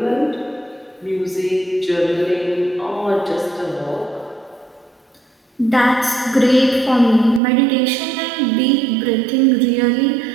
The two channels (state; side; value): drops out; left; at 7.4 s